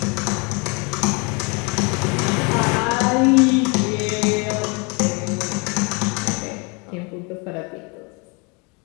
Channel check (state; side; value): quieter; right; 31.3 dB